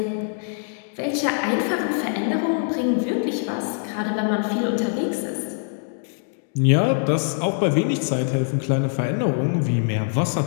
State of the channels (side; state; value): right; silent; digital silence